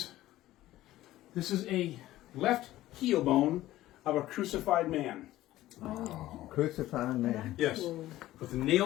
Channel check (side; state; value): right; quieter; 15.3 dB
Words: a left heel bone of a crucified man. Crucified man. Yes, with the